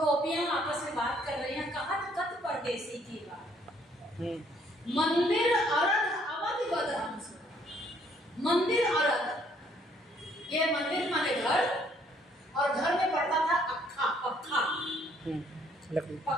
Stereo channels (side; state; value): both; normal; correlation 0.65